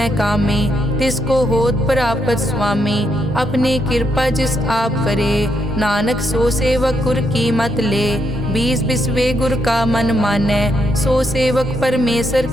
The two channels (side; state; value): both; normal; correlation 0.78